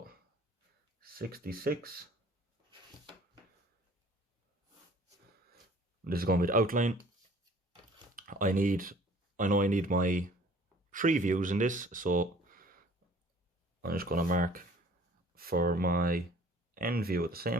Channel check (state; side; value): normal; both; correlation 0.52